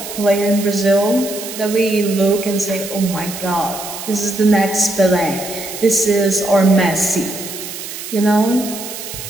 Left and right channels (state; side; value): noise; right; hiss, 10 dB below the sound